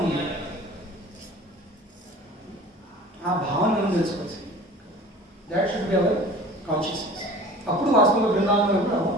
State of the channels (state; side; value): normal; both; correlation 0.42